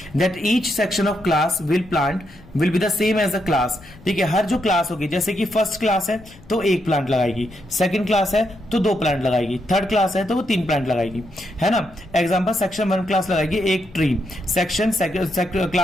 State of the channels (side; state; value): left; noise; rumble, 23 dB below the sound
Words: that each section of class will be the same as the class. ठीक है, हर जो क्लास होगी, जैसे कि फर्स्ट क्लास है तो 1 प्लांट लगाएगी, सेकंड क्लास है तो 2 प्लांट लगाएगी, थर्ड क्लास है तो वो 3 प्लांट लगाएगी, है ना। एग्जांपल, सेक्शन 1 क्लास लगाएगी 1 ट्री, सेक्शन